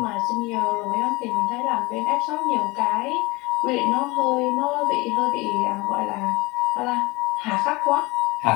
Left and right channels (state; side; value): quieter; right; 23.2 dB